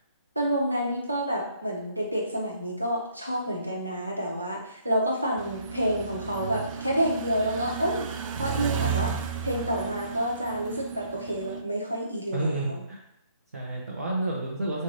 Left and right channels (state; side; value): inverted; both; correlation -0.65